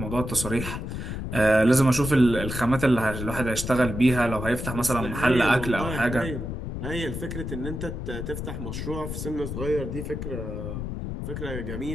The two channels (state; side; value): noise; left; rumble, 5 dB below the sound